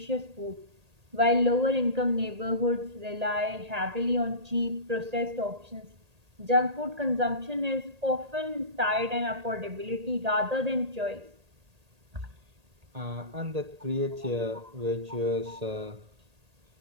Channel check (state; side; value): late; left; 1.8 ms